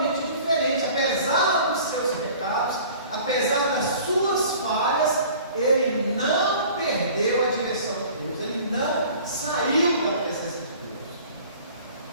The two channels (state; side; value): inverted; both; correlation -0.47